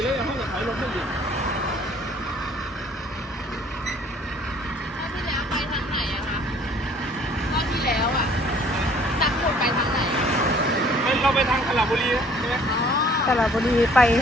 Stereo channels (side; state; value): both; normal; correlation 0.57